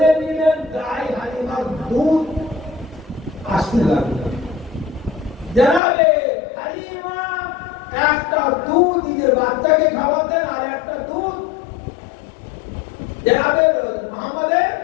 নিলেন, দাই হালিমার দুধ আসতে লাগলো। জনাবে হালিমা একটা দুধ নিজের বাচ্চাকে খাওয়াতেন, আর একটা দুধ জনাবে মুহাম্মদ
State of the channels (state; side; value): drops out; right; at 5.8 s